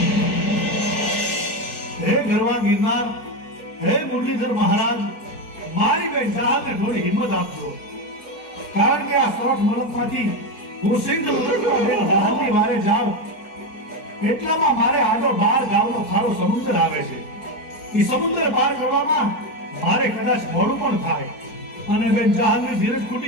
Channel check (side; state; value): right; late; 4.7 ms